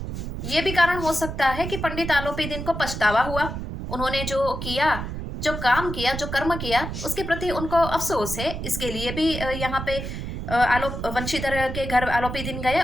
ये भी कारण हो सकता है कि पंडित आलोपी दिन को पछतावा हुआ, उन्होंने जो किया, जो काम किया, जो कर्म किया, उसके प्रति उनको अफसोस है। इसके लिए भी यहाँ पे वंशीधर के घर आलोपी दिन गए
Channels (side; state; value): right; noise; rumble, 6 dB below the sound